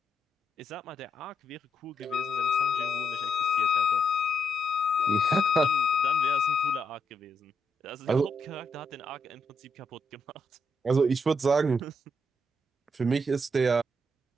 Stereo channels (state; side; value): normal; both; correlation 0.79